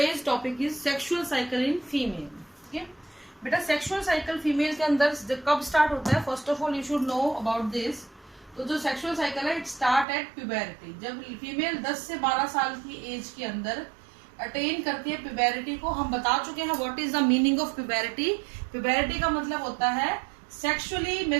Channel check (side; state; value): left; drops out; at 10.1 s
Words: topic is sexual cycle in female. ठीक है बेटा, sexual cycle female के अंदर कब स्टार्ट होता है? First of all you should know about this. तो जो सेक्सुअल साइकिल है इट स्टार्ट एट प्यूबेरिटी। जब फीमेल 10 से 12 साल की एज के अंदर अटेन करती है प्यूबेरिटी को, हम बता चुके हैं what is the meaning of puberty. Puberty का मतलब होता है सेक्सुअली